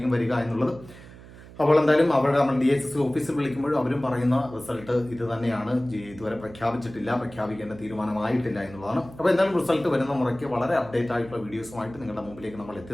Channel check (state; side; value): noise; right; hum, 18 dB below the sound